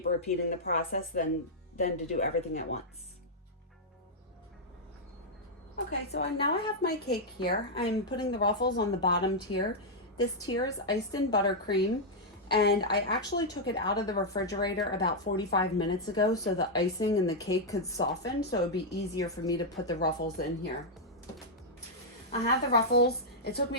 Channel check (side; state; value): both; normal; correlation -0.05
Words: repeating the process than to do everything at once. Okay, so now I have my cake here. I'm putting the ruffles on the bottom tier. This tier is iced in buttercream, and I actually took it out of the refrigerator about 45 minutes ago so the icing and the cake could soften, so it'd be easier for me to put the ruffles in here. I have the ruffles. It took